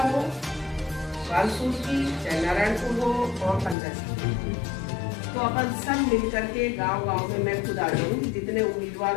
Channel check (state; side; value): drops out; right; at 3.8 s